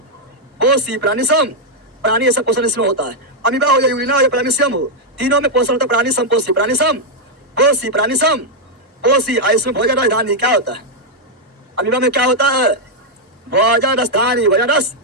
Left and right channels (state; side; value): normal; both; correlation -0.02